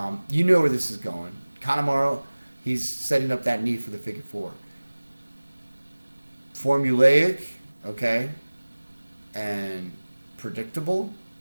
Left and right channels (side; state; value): both; inverted; correlation -1.00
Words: You know where this is going. Kanemaru, he's setting up that knee for the figure four. Formulaic, okay, and predictable,